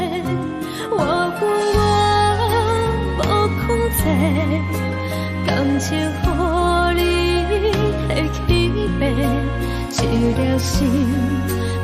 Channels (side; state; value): both; identical; correlation 1.00